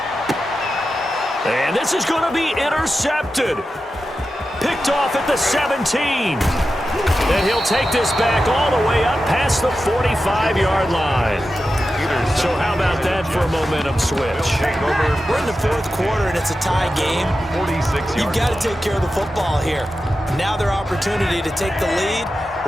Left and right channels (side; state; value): both; normal; correlation 0.91